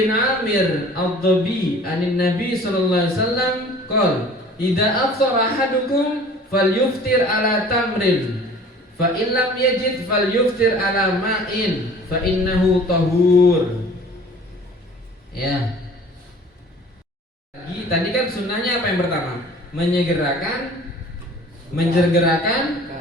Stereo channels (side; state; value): both; normal; correlation 0.47